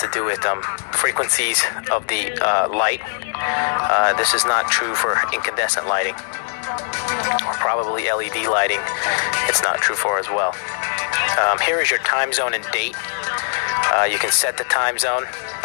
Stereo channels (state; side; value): silent; right; digital silence